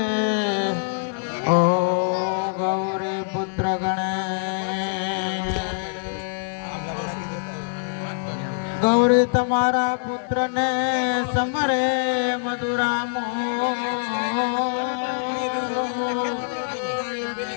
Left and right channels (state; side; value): silent; right; 63 dB below the other